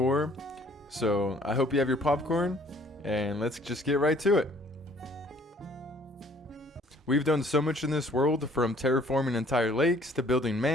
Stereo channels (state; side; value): normal; both; correlation 0.58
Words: so I hope you have your popcorn, and let's just get right to it. We've done so much in this world, from terraforming entire lakes, to building